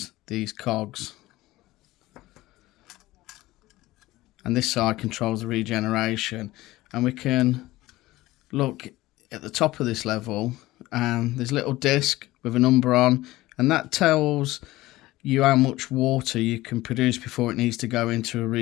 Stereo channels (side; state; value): right; quieter; 17.9 dB